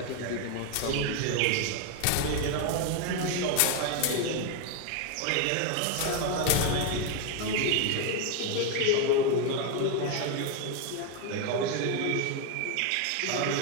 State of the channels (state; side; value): different; both; correlation 0.02